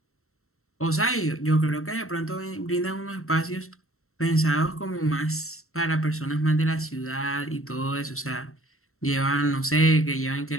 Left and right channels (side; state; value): right; late; 0.63 ms